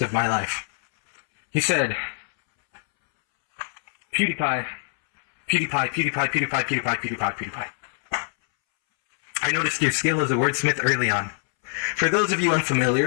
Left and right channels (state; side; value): silent; right; 63 dB below the other